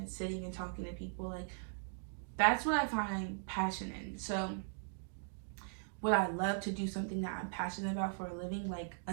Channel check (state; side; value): silent; left; digital silence